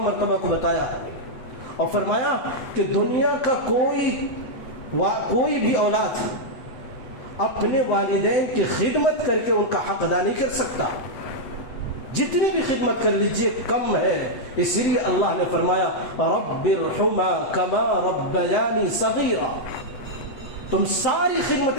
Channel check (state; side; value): late; right; 7.8 ms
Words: مرتبہ کو بتایا، اور فرمایا کہ دنیا کا کوئی بھی اولاد اپنے والدین کی خدمت کر کے ان کا حق ادا نہیں کر سکتا، جتنی بھی خدمت کر لیجئے کم ہے۔ اسی لیے اللہ نے فرمایا رب ارحمھا کما ربیانی صغیرا، تم ساری